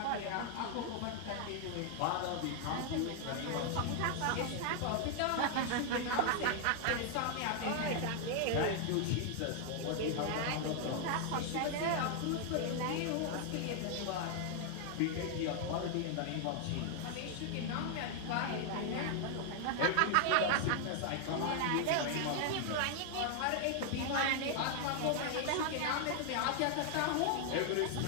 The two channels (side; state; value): both; different; correlation 0.00